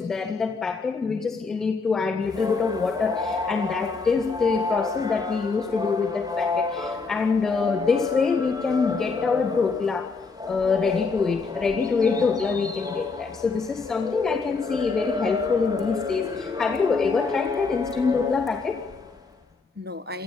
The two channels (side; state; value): right; quieter; 4.5 dB